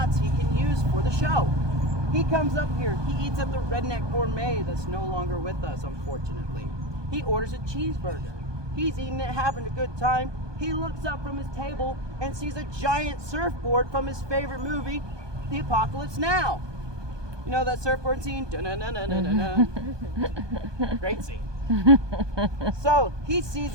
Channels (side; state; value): left; late; 1.2 ms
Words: he can use for the show. He comes up here, he eats at the Redneck Gourmet that's no longer with us, unfortunately. He orders a cheeseburger. He's eating it, having a good time. He looks up from his table and sees a giant surfboard from his favorite movie, The Apocalypse Now. You know that surfboard scene? Da-na-na-na-na-na-na. Great scene. So he sees